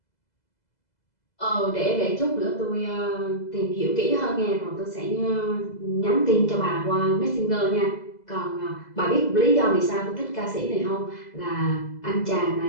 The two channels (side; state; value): right; late; 2.0 ms